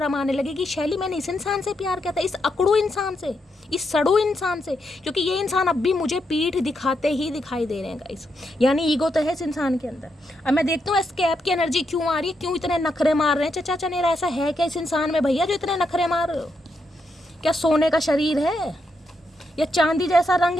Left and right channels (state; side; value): normal; both; correlation 0.81